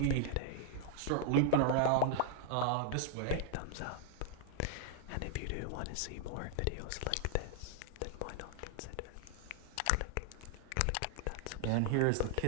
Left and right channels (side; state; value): both; different; correlation 0.00